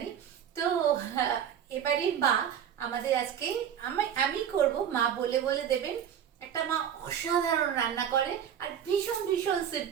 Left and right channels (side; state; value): left; quieter; 9.1 dB